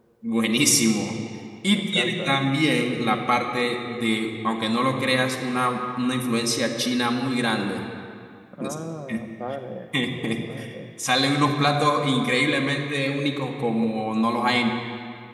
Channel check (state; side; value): identical; both; correlation 1.00